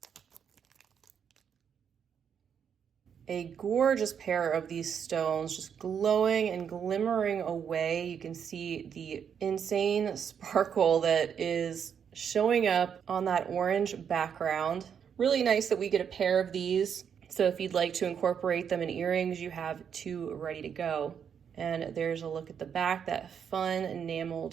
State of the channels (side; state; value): left; quieter; 7.7 dB